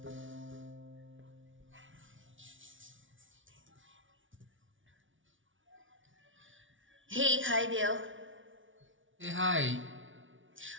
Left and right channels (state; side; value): late; left; 0.56 ms